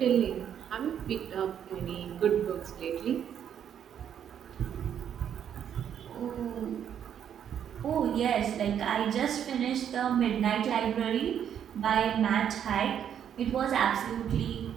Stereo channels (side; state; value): left; quieter; 9.1 dB